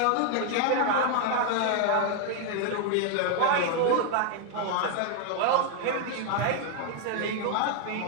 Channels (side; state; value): both; different; correlation 0.00